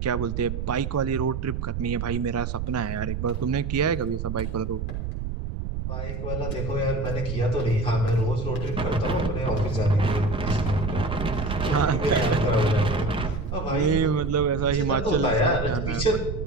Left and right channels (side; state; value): right; noise; rumble, 4 dB below the sound